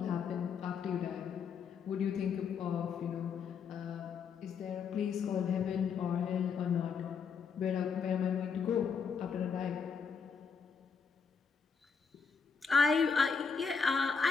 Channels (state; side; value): quieter; right; 5.9 dB